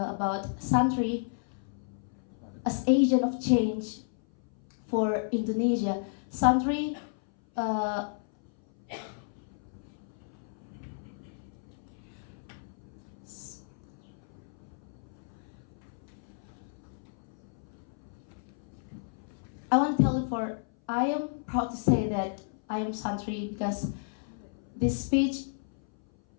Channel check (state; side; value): silent; right; 56 dB below the other